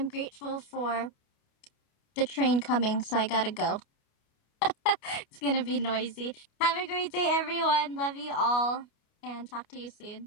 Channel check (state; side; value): late; right; 29 ms